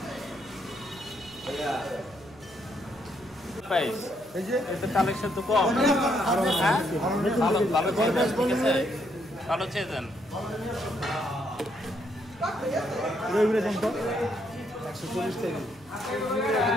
কালেকশন তো কম। ভালো চেয়েছেন।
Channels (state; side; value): noise; right; hum, 27 dB below the sound